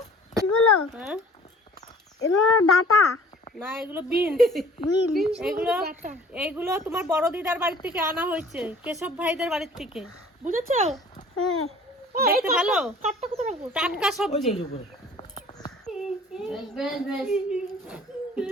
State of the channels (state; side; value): normal; both; correlation 0.49